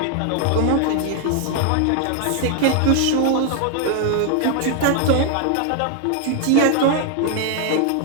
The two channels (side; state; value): both; different; correlation 0.00